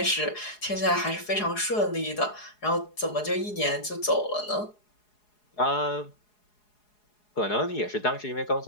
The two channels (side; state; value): right; late; 4.8 ms